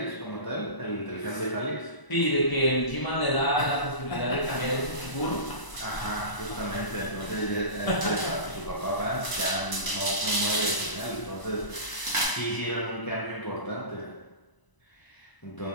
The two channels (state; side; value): late; right; 1.0 ms